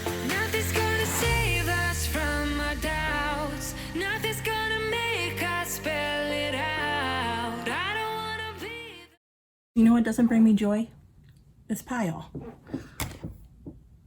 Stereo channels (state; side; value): identical; both; correlation 1.00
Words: Nothing's gonna save us from our doubts. Nothing's gonna make us spell it out. I don't wanna be. You know what doesn't bring me joy? This pile.